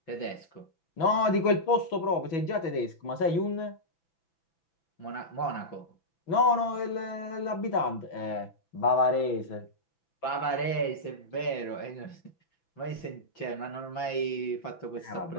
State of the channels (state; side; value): late; right; 6.1 ms